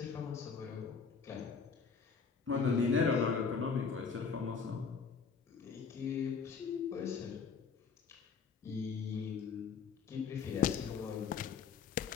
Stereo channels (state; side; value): quieter; right; 5.6 dB